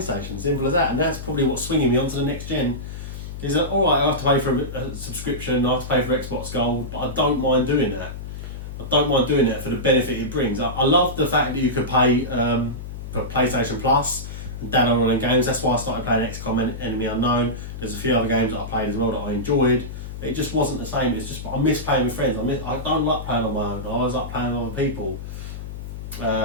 Simple as that. And that's probably what's swinging me onto the next gen. Is that alright? I have to pay for a subscription. I have to pay for Xbox Gold, but I don't mind doing that. I don't mind doing that for the benefit it brings. I love the fact that you could pay for PlayStation Plus and download all the games. That's why I started playing XCOM Enemy Unknown. There's a few other games that I played as well that I enjoyed. It just wasn't the same. It's just I miss playing with friends. I don't like playing on my own. I always like playing with other people.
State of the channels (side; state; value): left; noise; hum, 9 dB below the sound